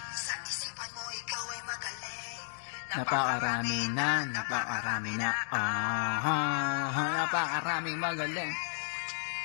Napakarami na, napakaraming magaling.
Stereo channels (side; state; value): right; silent; digital silence